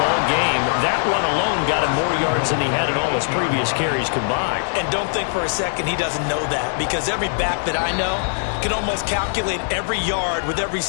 game. That run alone got him more yards than he had in all his previous carries combined. And don't think for a second he doesn't know that, because every back that I know can almost calculate every yard with every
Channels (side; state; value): right; silent; 65 dB below the other